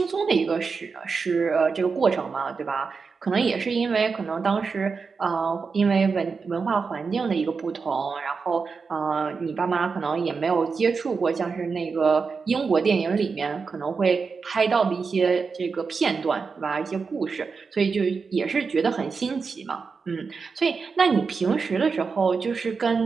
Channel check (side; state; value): left; quieter; 5.0 dB